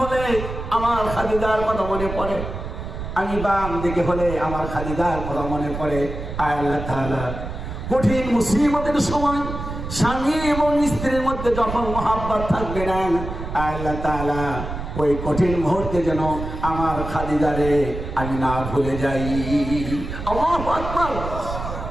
হলে আমার খাদিজার কথা মনে পড়ে, আমি বাম দিকে হলে আমার খাদিজার কথা মনে পড়ে। আয় আল্লাহ তাআলা, কঠিন মুসিবতের সময় স্বামী এবং স্ত্রীর মধ্যে যখন মহাব্বত থাকবে না, আয় আল্লাহ তাআলা ওই কঠিন মুহূর্তে যেন আমার খাদিজারে আমি না ভুলে যাই। আল্লাহু আকবার।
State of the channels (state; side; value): noise; right; rumble, 7 dB below the sound